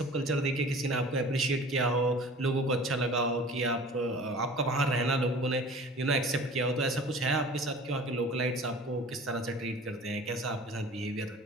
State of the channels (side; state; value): both; normal; correlation 0.43